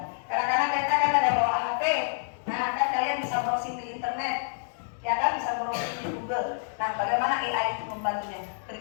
Kadang-kadang kita kan ada bawa HP. Nah, kan kalian bisa browsing di internet, ya kan, bisa browsing di Google. Nah, bagaimana AI itu membantunya?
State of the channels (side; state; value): right; silent; digital silence